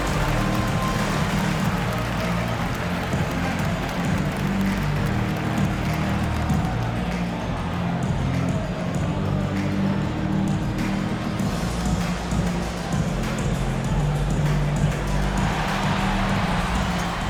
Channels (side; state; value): both; identical; correlation 1.00